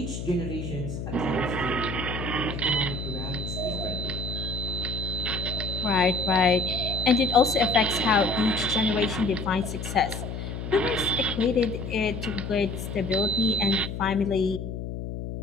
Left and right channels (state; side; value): noise; left; hum, 6 dB below the sound